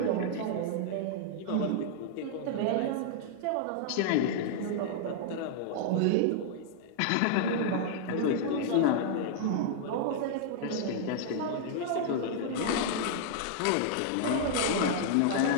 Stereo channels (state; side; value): different; both; correlation -0.01